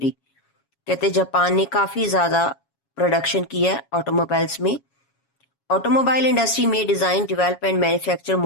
कहते Japan ने काफ़ी ज़्यादा production की है automobiles में. Automobile industry में design, develop and manufacture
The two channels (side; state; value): right; late; 7.2 ms